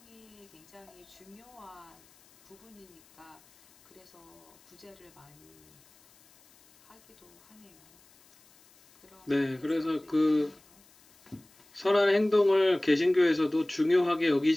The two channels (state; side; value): noise; left; hiss, 28 dB below the sound